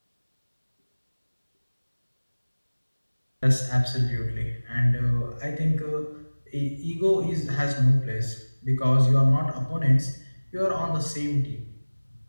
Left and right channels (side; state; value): both; inverted; correlation -1.00